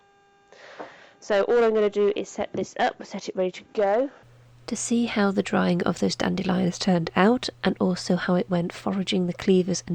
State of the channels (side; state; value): both; identical; correlation 1.00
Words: So all I'm going to do is set this up, set it ready to go. To see how the drying of those dandelions turned out, and also how it went foraging the cleavers